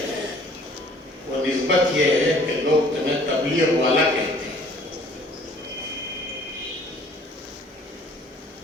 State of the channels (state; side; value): normal; both; correlation 0.55